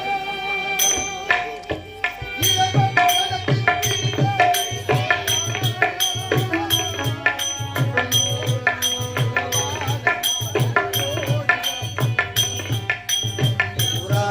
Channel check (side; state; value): both; identical; correlation 1.00